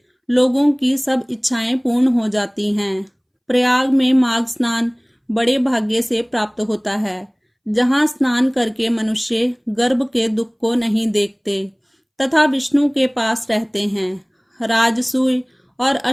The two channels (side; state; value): both; identical; correlation 1.00